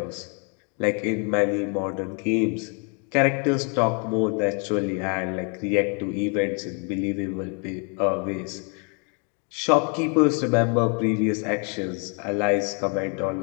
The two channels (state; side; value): quieter; right; 37.4 dB